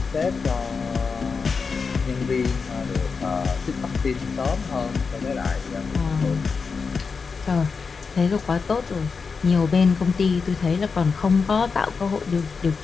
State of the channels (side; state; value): right; quieter; 5.1 dB